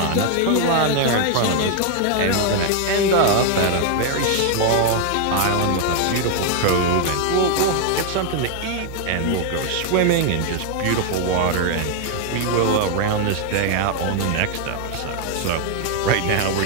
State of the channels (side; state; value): both; different; correlation 0.00